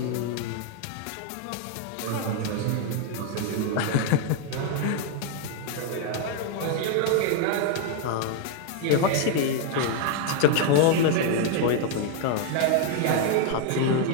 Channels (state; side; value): different; both; correlation 0.00